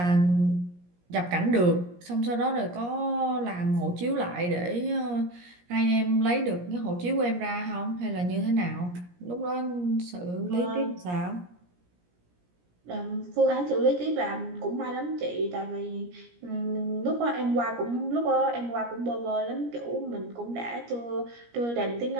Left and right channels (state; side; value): late; left; 17 ms